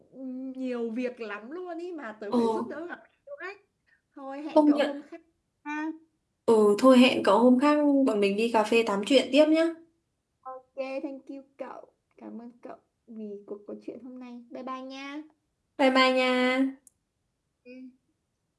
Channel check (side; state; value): both; identical; correlation 1.00